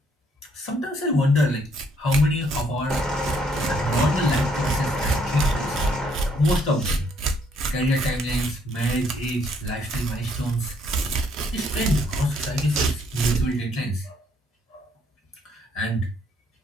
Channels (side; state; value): both; normal; correlation 0.68